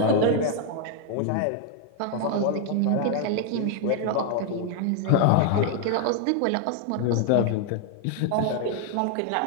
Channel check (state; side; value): different; both; correlation 0.00